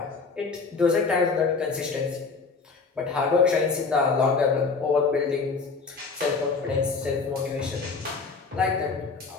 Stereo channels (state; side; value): quieter; right; 4.6 dB